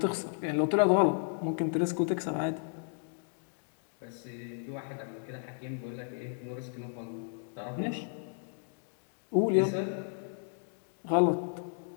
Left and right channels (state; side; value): silent; right; digital silence